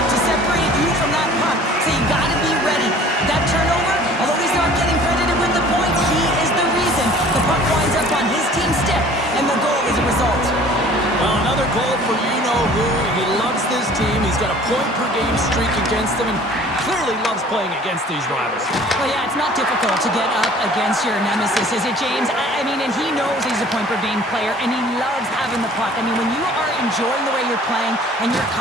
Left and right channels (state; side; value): normal; both; correlation 0.50